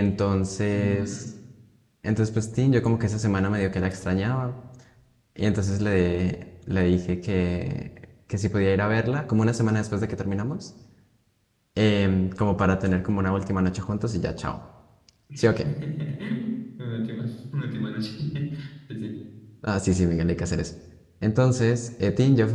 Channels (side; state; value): both; identical; correlation 1.00